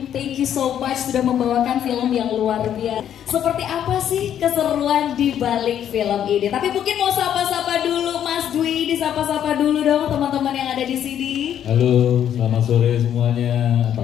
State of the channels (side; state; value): right; quieter; 9.9 dB